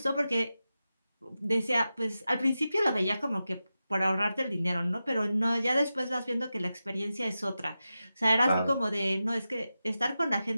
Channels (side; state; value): both; inverted; correlation -0.92